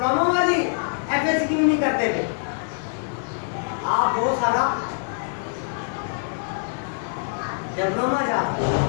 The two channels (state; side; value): silent; right; digital silence